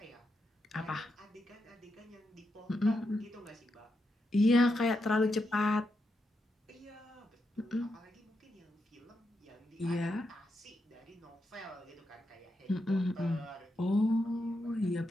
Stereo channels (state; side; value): normal; both; correlation 0.84